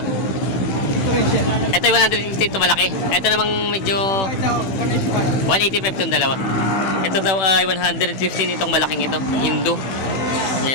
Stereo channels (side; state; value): right; late; 16 ms